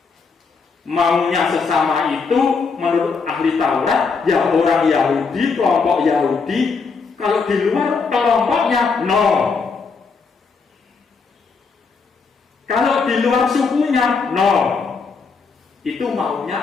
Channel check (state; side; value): quieter; right; 4.9 dB